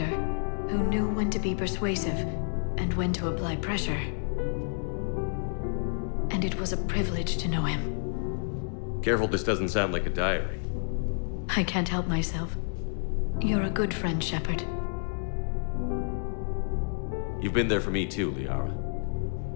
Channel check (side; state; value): right; silent; 58 dB below the other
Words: who knew when to be persuasive and when to apply pressure. And it was a privilege to know him. Careful this doesn't sound like a diary. I can't help myself. You're a good friend, Shepard. You've been there for me too, Liara.